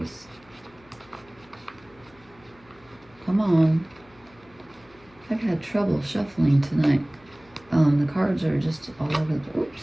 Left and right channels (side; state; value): left; noise; hum, 28 dB below the sound